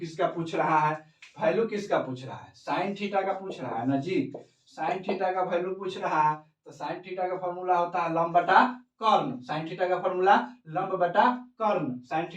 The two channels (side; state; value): both; identical; correlation 1.00